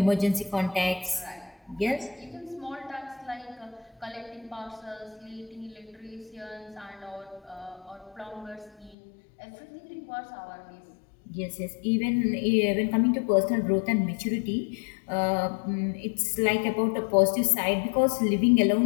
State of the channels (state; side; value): drops out; right; at 9.0 s